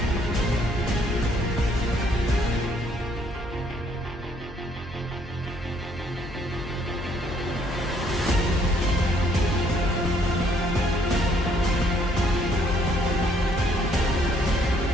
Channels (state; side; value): normal; both; correlation 0.66